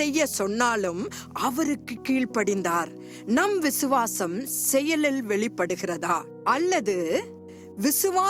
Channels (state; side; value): identical; both; correlation 1.00